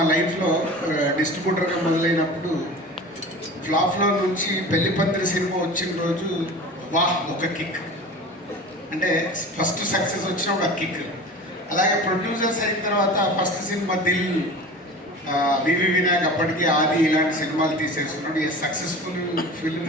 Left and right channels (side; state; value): both; normal; correlation 0.36